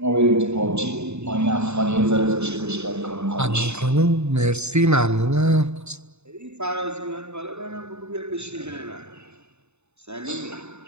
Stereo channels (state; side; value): late; left; 0.81 ms